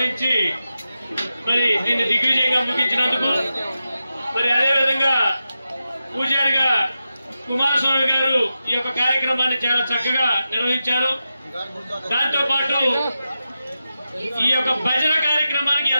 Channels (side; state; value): both; inverted; correlation -0.90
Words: మరి దీన్ని దిగ్విజయంగా ముగించినందుకు. మరి అదేవిధంగా పూజారిగా కుమారస్వామి గారు ఈ యొక్క కార్యక్రమాన్ని చాలా చక్కగా నిర్వహించారు. దాంతో పాటు ఈ యొక్క భజన కార్యక్రమానికి